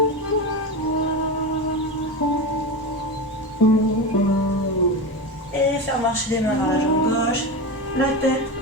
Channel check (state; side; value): normal; both; correlation 0.21